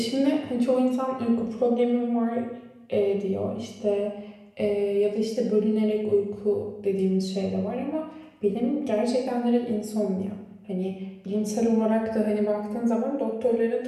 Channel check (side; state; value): both; identical; correlation 1.00